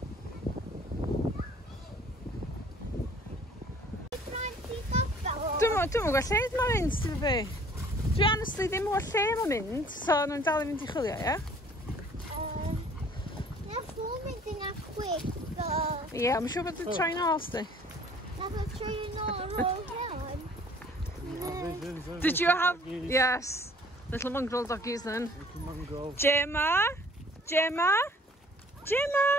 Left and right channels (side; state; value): both; normal; correlation 0.55